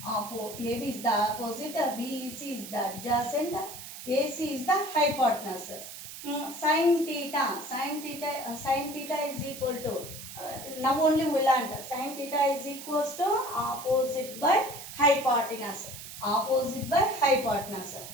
AB is the opposite, BEC is the adjacent, AC is the hypotenuse. Sin theta is equal to, now only we learned, sin theta is equals to opposite by hypotenuse. opposite by hypotenuse.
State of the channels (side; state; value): right; noise; hiss, 12 dB below the sound